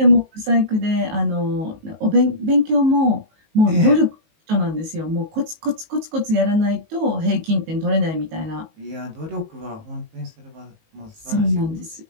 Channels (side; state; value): left; late; 19 ms